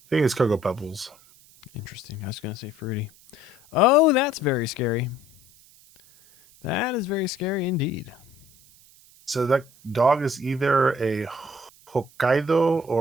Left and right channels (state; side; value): noise; right; hiss, 26 dB below the sound